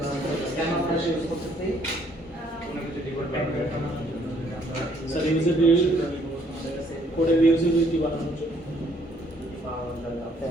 স্যার ইউজেবিলিটি কোডের ইউজেবিলিটি বানানোর জন্য।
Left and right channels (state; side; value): normal; both; correlation 0.65